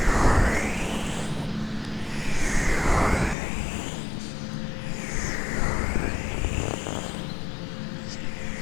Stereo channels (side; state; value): right; drops out; at 3.4 s